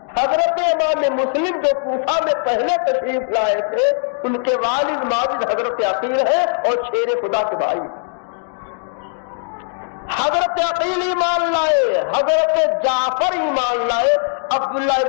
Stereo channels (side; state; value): right; silent; digital silence